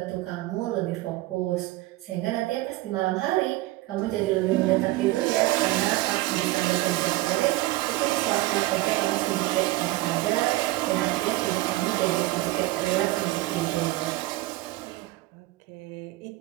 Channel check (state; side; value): quieter; left; 18.5 dB